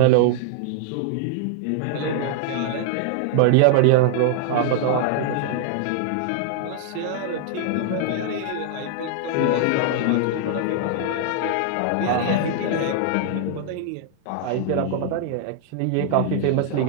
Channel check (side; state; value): both; different; correlation -0.01